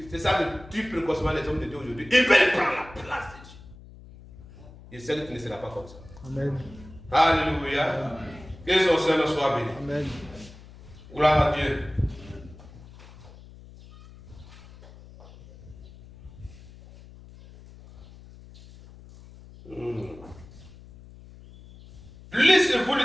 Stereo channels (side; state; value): left; noise; hum, 19 dB below the sound